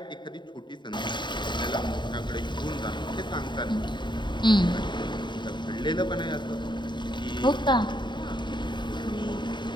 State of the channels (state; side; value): late; right; 0.22 ms